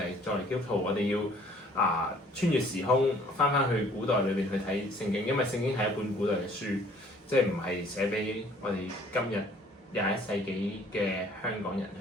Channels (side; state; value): both; normal; correlation 0.57